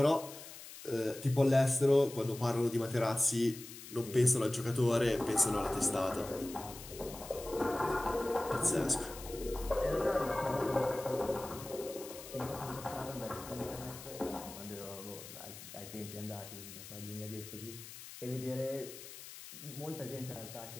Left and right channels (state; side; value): noise; left; hiss, 14 dB below the sound